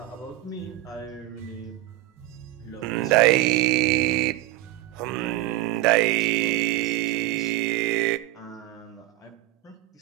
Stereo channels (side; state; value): left; quieter; 17.0 dB